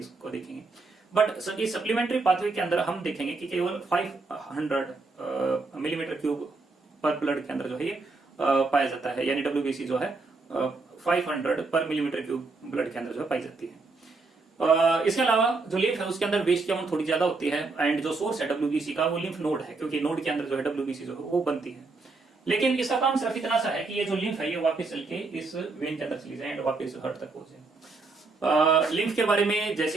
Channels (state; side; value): quieter; left; 3.8 dB